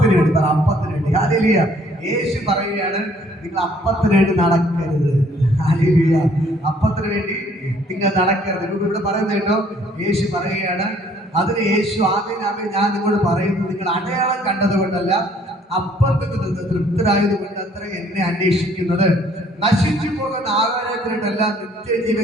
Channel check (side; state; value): both; normal; correlation 0.61